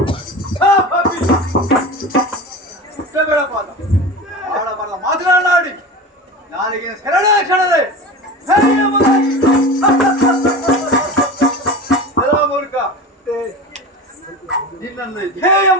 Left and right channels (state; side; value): normal; both; correlation 0.30